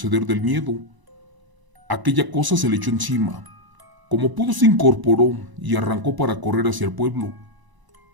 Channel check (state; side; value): late; left; 1.0 ms